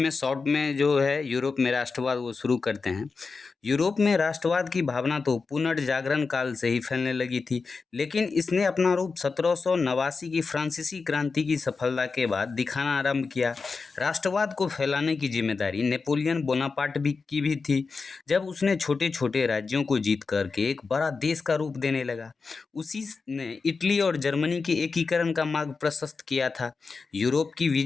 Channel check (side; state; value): right; quieter; 4.6 dB